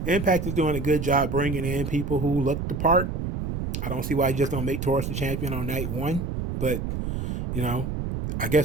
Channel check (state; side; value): noise; right; rumble, 4 dB below the sound